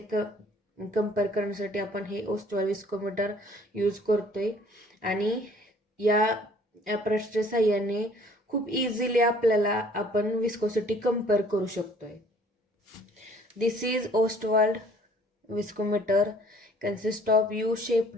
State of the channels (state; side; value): normal; both; correlation 0.56